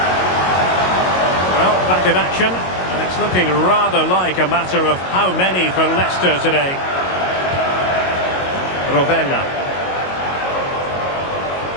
Well, back in action. And it's looking rather like a matter of how many for Leicester today. Rovella.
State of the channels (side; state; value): right; late; 22 ms